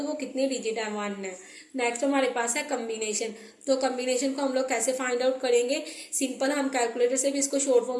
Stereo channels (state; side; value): identical; both; correlation 1.00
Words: वो कितने डिजिट है? वन है। नेक्स्ट हमारे पास है कम्बिनेशन। तो कम्बिनेशन को हम लोग कैसे फाइंड आउट करेंगे? सिंपल, हम कैलकुलेटर से भी इसको शॉर्ट